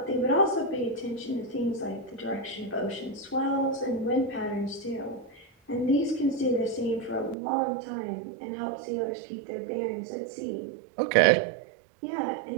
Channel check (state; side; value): drops out; left; at 7.4 s